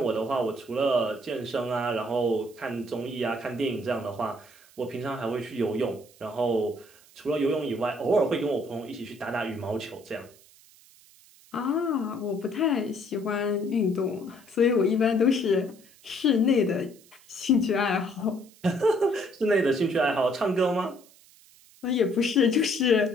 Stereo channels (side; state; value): right; noise; hiss, 26 dB below the sound